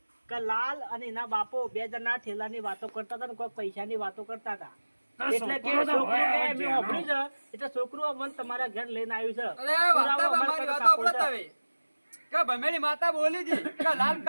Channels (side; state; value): both; inverted; correlation -1.00